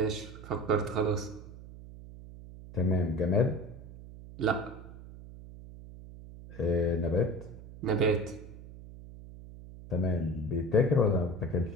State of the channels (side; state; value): right; noise; hum, 15 dB below the sound